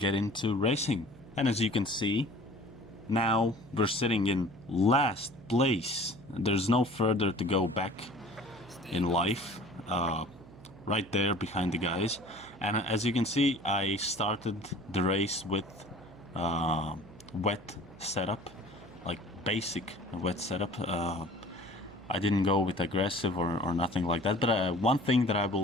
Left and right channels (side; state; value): right; noise; hum, 20 dB below the sound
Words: into racing. And as you can see, now we're sitting in last place. There's no further to go back in life, right there behind the guys. And as you can see, I started the race with wet setup, like basic wet setup. I didn't go with aggressive or nothing like that, but one thing that I